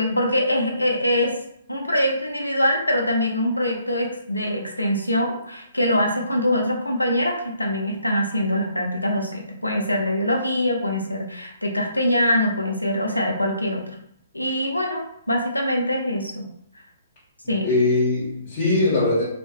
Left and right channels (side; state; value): both; inverted; correlation -0.67